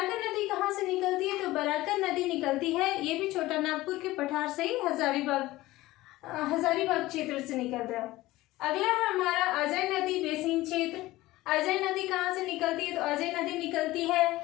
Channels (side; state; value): right; quieter; 17.9 dB